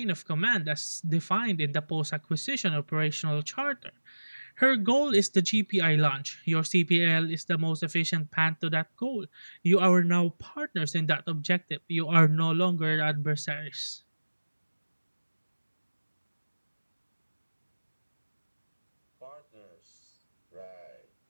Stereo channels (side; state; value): both; inverted; correlation -1.00